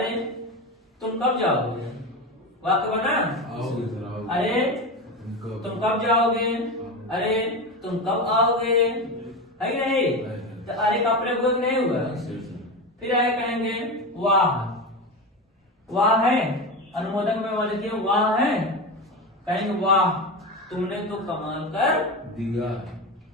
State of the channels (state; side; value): normal; both; correlation 0.21